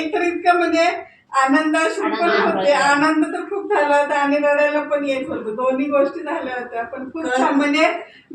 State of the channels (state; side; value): identical; both; correlation 1.00